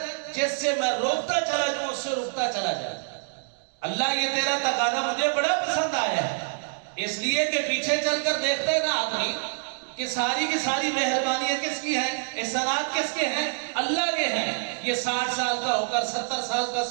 جس سے میں روکتا چلا جاؤں اس سے روکتا چلا جائے۔ اللہ یہ تیرا تقاضا مجھے بڑا پسند آیا ہے، اس لیے کہ پیچھے چل کر دیکھتا ہے نا آدمی کہ ساری کی ساری مہربانیاں کس کی ہیں، احسانات کس کے ہیں؟ اللہ کے ہیں۔ یہ 60 سال کا ہو کر 70 سال کا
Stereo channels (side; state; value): left; silent; digital silence